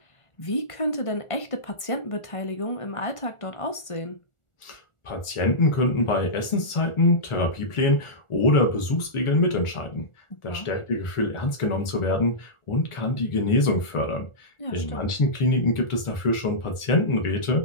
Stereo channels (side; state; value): right; late; 1.4 ms